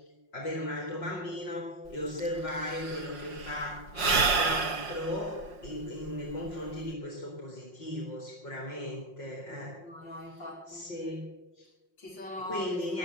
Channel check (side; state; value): right; late; 5.6 ms